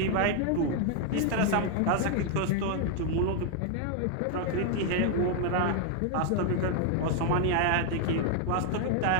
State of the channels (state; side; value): different; both; correlation 0.00